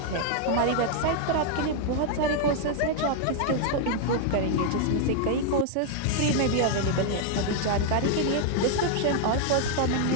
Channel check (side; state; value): both; different; correlation 0.00